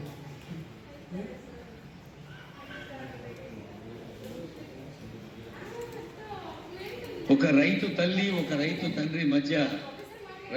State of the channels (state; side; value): identical; both; correlation 1.00